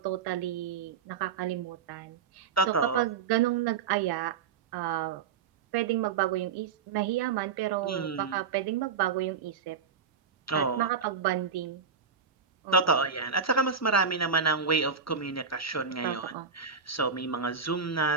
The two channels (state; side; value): quieter; left; 6.0 dB